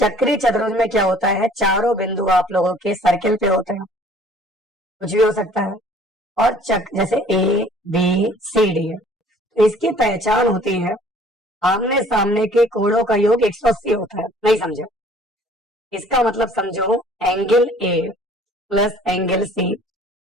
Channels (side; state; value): both; normal; correlation 0.54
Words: चतुर्भुज में क्या होता है, चारों बिंदु आप लोगों के सर्किल पे होते हैं, कुछ भी हो सकता है। और जैसे ABCD है, तो इसकी पहचान होती है आमने सामने के कोणों का योग 180 होता है। नहीं समझे? इसका मतलब समझो, angle A plus angle C,